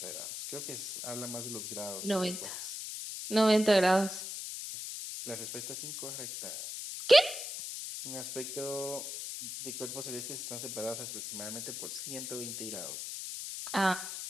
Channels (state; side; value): noise; left; hiss, 6 dB below the sound